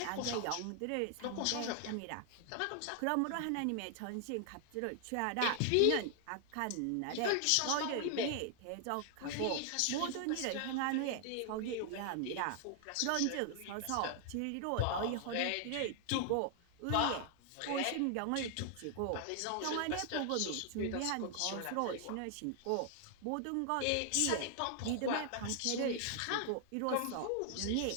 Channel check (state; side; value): different; both; correlation 0.00